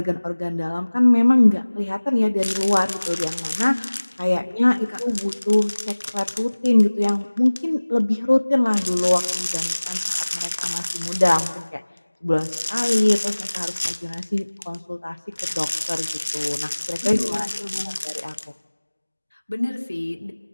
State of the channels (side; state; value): both; inverted; correlation -1.00